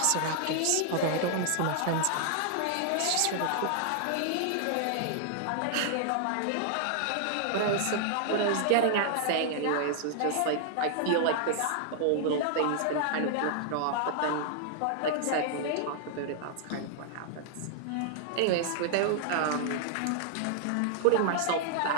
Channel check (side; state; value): both; different; correlation -0.01